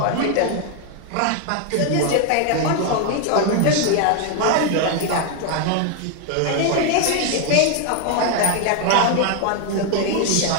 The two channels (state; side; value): different; both; correlation 0.01